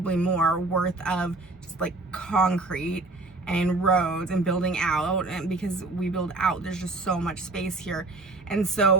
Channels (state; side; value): quieter; left; 3.2 dB